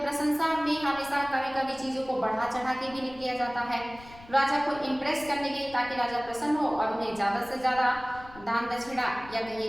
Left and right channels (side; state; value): left; noise; rumble, 20 dB below the sound